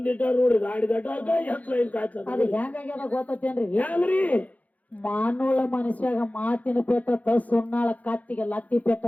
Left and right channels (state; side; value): late; right; 0.075 ms